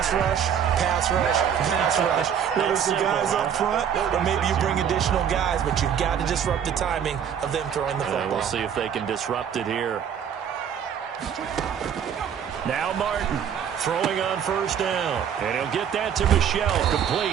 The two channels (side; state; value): left; quieter; 8.4 dB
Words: rush, pass rush, pass rush. Whether it's the guys up front, or maybe you bring additional guys, but you've got to disrupt the timing of them throwing the football. We'll see if they can disrupt it here. Now Martin throwing on first down. And he'll get that to Michel,